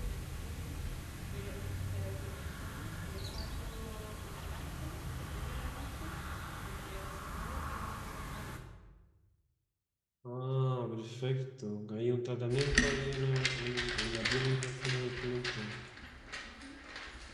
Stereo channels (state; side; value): identical; both; correlation 1.00